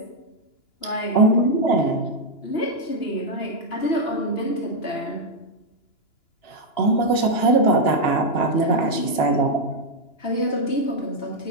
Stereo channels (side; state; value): right; late; 2.9 ms